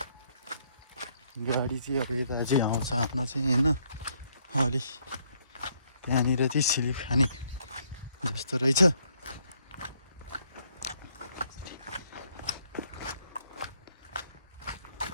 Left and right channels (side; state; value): both; inverted; correlation -0.70